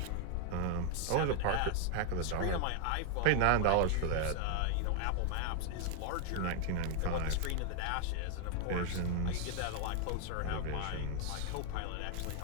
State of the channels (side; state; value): both; different; correlation 0.00